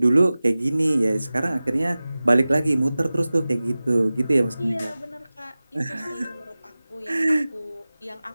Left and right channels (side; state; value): both; inverted; correlation -0.97